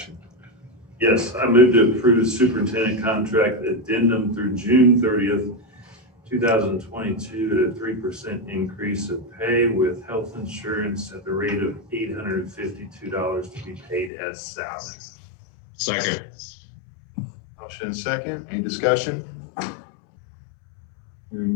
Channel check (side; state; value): right; drops out; at 14.1 s